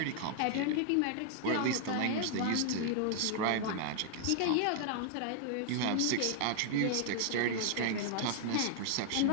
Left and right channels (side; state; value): both; different; correlation 0.00